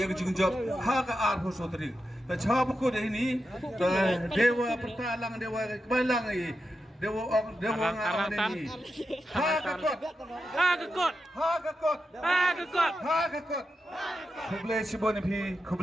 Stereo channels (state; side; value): normal; both; correlation 0.88